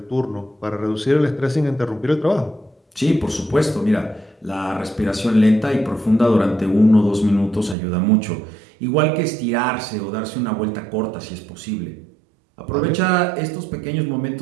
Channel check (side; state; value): left; drops out; at 7.8 s